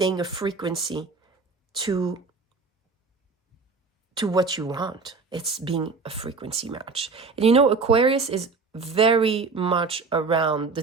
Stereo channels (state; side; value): quieter; left; 4.4 dB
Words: a frequency to what you want. It's being a frequency match. And you know, Aquarius is very much around the